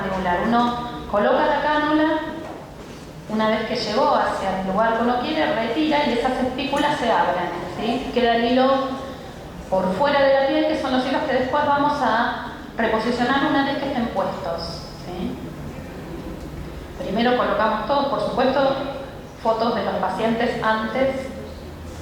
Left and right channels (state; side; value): identical; both; correlation 1.00